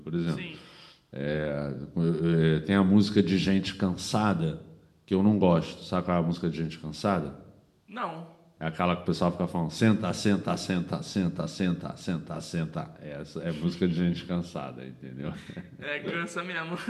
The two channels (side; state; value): both; identical; correlation 1.00